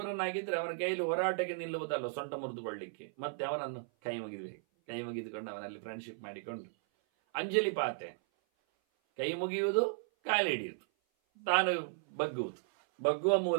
ಅವನ ಕೈಯಲ್ಲಿ ಹೋರಾಟಕ್ಕೆ ನಿಲ್ಲುವುದಲ್ಲ, ಸೊಂಟ ಮುರಿದುಕೊಳ್ಳಿಕ್ಕೆ. ಮತ್ತೆ ಅವನನ್ನು ಕೈ ಮುಗಿದುಕೊಂಡು ಅವನಲ್ಲಿ ಫ್ರೆಂಡ್ಶಿಪ್ ಮಾಡಿಕೊಂಡು ಅಂಜಲಿ ಪಾತೆ, ಕೈ ಮುಗಿಯುವುದು, ಕಾಲು ಹಿಡಿಯುವುದು, ತಾನು ಬಗ್ಗುವುದು, ಬಗ್ಗುವ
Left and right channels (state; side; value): silent; left; 54 dB below the other